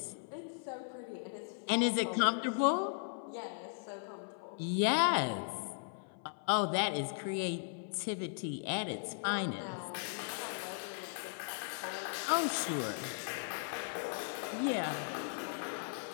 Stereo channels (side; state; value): right; silent; 53 dB below the other